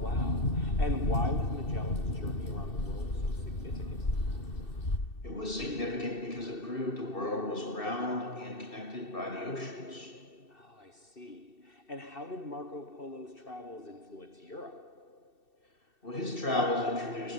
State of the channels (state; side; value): late; right; 2.7 ms